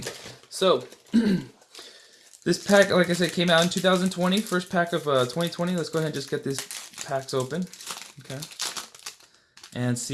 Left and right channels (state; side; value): identical; both; correlation 1.00